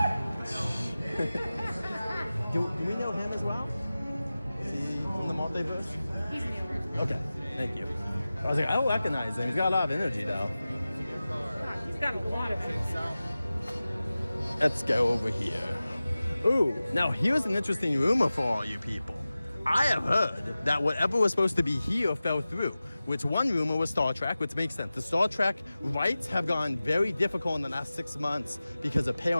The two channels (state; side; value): inverted; both; correlation -0.96